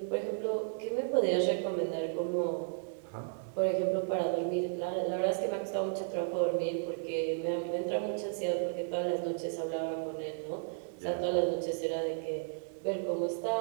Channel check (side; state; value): left; silent; digital silence